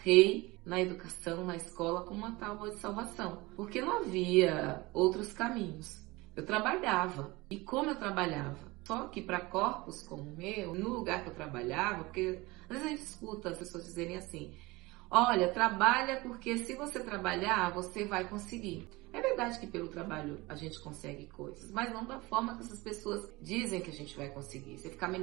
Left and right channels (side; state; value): left; quieter; 22.3 dB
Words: na educação, na escola, como uma tábua de salvação. Porque não havia outros caminhos. Eu trabalhava. E como eu trabalhava? Só que para corpos como o meu, no lugar que eu trabalhava, porque às vezes a gente escuta as pessoas dizerem assim: olha, trabalha porque se você trabalhar, você vai conseguir. É verdade que pelo trabalho a gente consegue coisas, mas não da forma que essas pessoas dizem que a gente vai conseguir. Você ficar